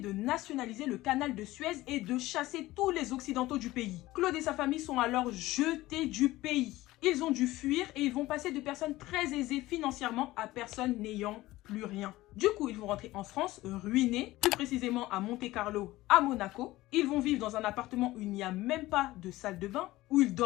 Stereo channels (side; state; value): right; quieter; 17.7 dB